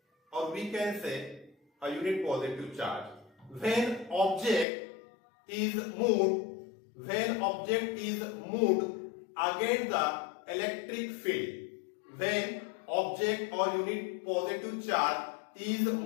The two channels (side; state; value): right; drops out; at 4.7 s